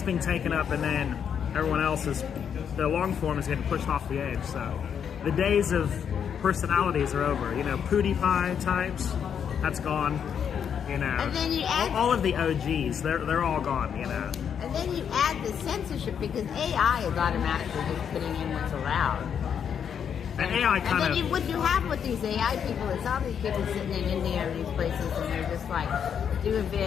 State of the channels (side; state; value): right; quieter; 7.9 dB